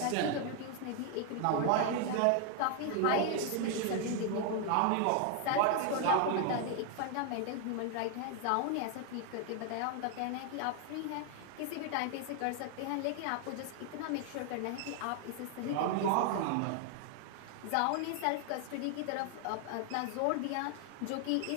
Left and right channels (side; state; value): both; different; correlation 0.00